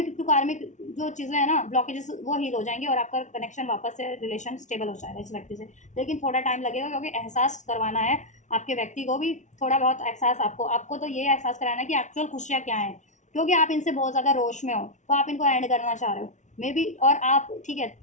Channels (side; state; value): right; late; 0.35 ms